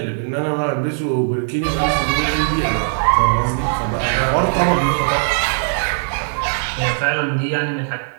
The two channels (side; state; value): left; silent; 67 dB below the other